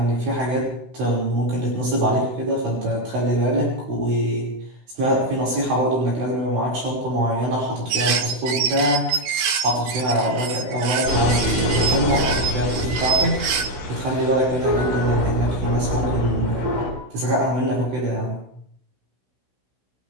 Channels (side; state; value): left; late; 16 ms